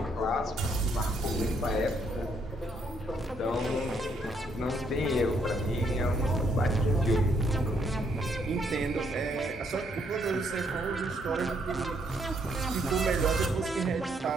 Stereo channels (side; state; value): both; normal; correlation 0.71